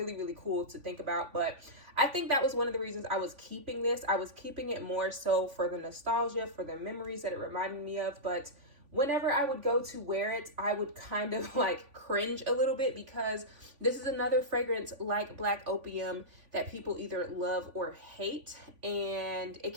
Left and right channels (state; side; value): late; left; 3.5 ms